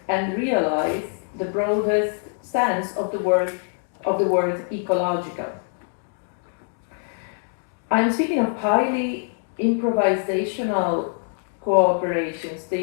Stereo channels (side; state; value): right; silent; 57 dB below the other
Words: and realize the broadest sense of the word ecological. I'm speaking of highly improvisational cooperations